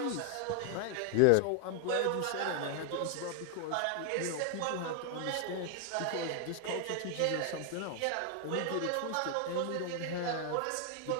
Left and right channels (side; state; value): both; different; correlation 0.01